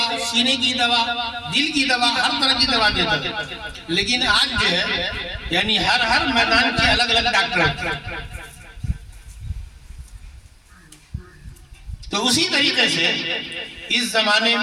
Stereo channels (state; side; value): identical; both; correlation 1.00